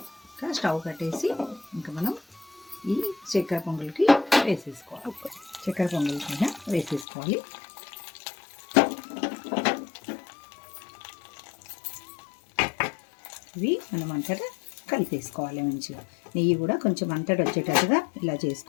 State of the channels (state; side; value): drops out; right; at 7.1 s